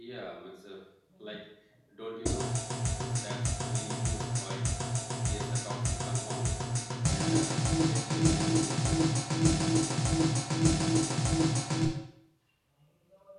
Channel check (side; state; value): both; identical; correlation 1.00